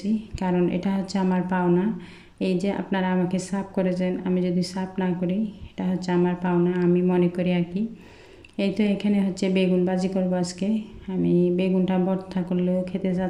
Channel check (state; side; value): identical; both; correlation 1.00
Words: কারণ এটা হচ্ছে আমার পাওনা। এই যে আপনারা আমাকে সাপ করেছেন, আমি যদি সাপ না করি এটা হচ্ছে আমার পাওনা, আমি মনে করি আর কি। এই তো এখানে হচ্ছে বেগুন ভাজি করবো আজকে। আমি বেগুনটা ভর্তা করলেও খেতে